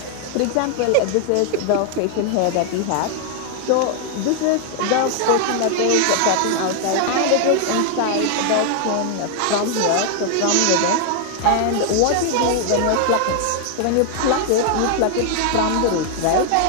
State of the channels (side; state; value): both; different; correlation 0.00